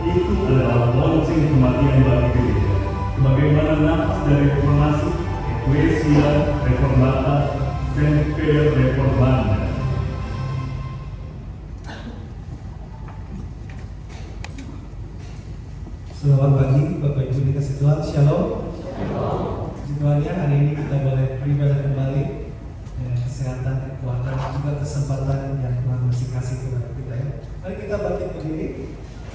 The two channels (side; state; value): both; identical; correlation 1.00